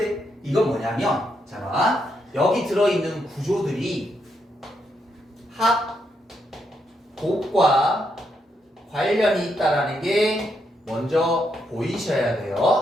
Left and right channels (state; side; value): normal; both; correlation 0.79